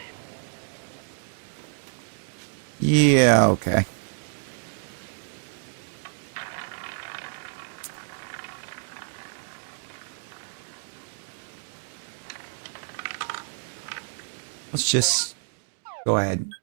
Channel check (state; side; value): silent; left; digital silence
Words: Yeah, okay. Let's just go ahead and